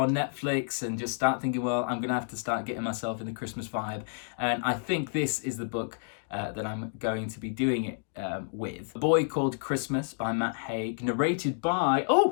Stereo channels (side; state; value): right; silent; digital silence